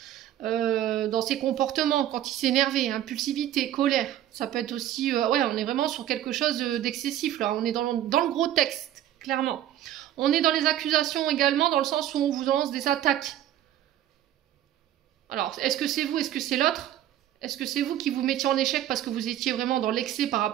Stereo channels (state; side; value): quieter; left; 12.2 dB